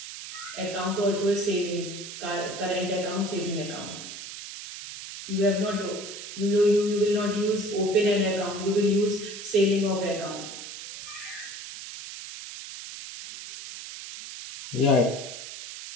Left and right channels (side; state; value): right; noise; hiss, 10 dB below the sound